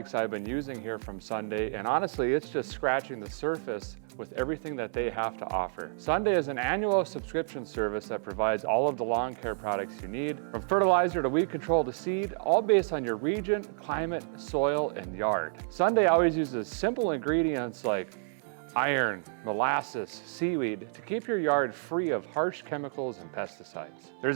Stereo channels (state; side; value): silent; left; 58 dB below the other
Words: I've been using here from Sunday, and honestly, it's just scratching the surface with everything that they have to offer. Sunday is an annual subscription service that provides all of the lawn care products you need, from fertilizer to weed control to seed, all based on your region, climate, soil, and yard. Sunday always uses simple ingredients like iron, molasses, seaweed to keep your yard free of harsh chemicals and pesticides.